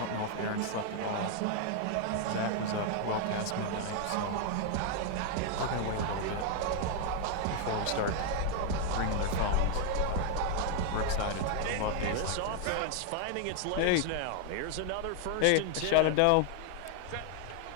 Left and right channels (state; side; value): different; both; correlation 0.00